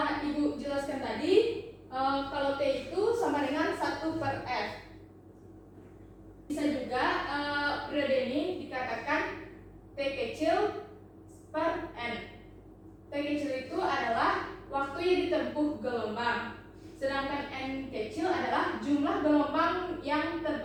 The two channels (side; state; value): both; identical; correlation 1.00